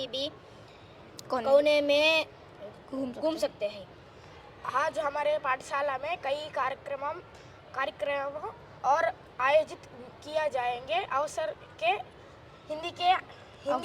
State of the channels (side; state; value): both; identical; correlation 1.00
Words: भी कोने में घूम सकते हैं। आज हमारे पाठशाला में कई कार्यक्रम और आयोजित किया जाएंगे